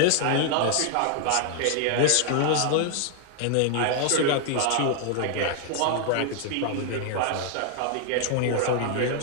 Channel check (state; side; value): different; both; correlation 0.00